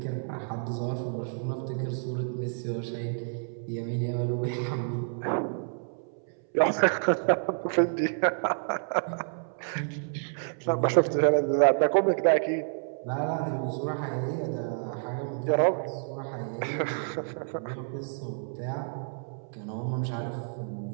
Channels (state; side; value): silent; left; 58 dB below the other